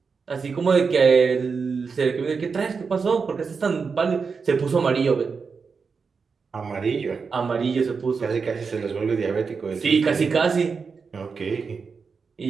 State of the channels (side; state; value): left; quieter; 5.3 dB